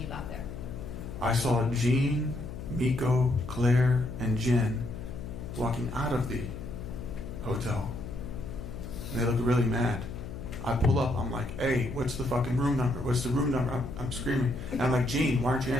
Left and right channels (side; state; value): left; noise; hum, 9 dB below the sound